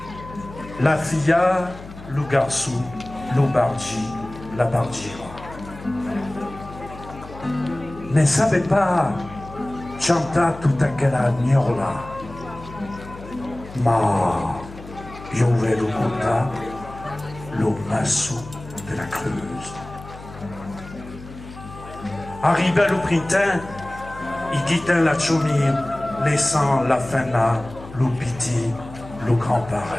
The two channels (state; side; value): noise; left; hum, 15 dB below the sound